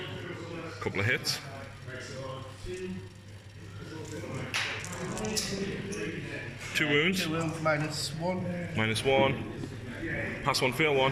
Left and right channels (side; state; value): both; identical; correlation 1.00